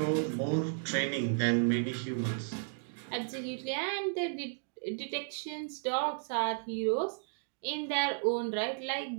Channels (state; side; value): silent; left; digital silence